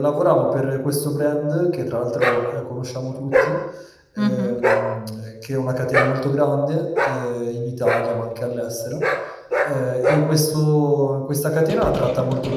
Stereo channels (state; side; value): identical; both; correlation 1.00